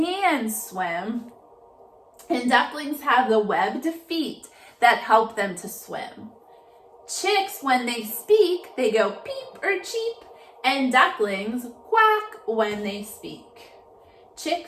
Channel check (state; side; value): identical; both; correlation 1.00